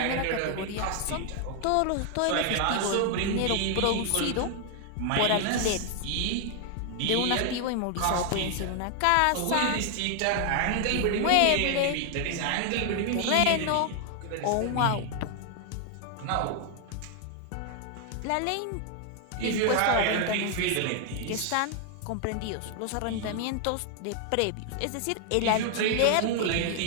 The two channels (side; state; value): both; different; correlation 0.00